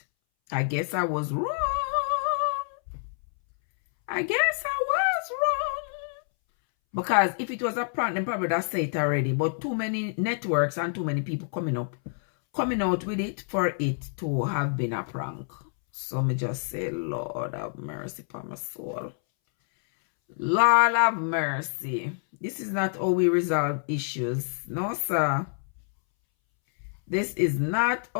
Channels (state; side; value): silent; right; 60 dB below the other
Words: I guess I was wrong. Because if it was a prank, then probably that say it already. But too many networks and too many people coming out with it for it to have been a prank. So me just say, Lord have mercy for my soul. Lord have mercy. This is not how we resolve issues. No, sir. This is not